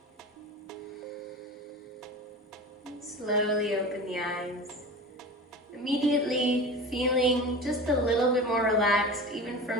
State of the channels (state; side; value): normal; both; correlation 0.33